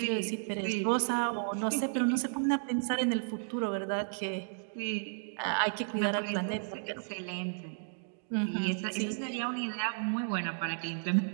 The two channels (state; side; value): silent; left; digital silence